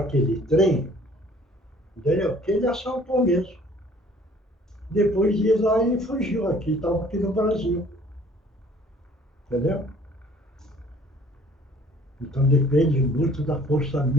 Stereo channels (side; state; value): both; normal; correlation 0.55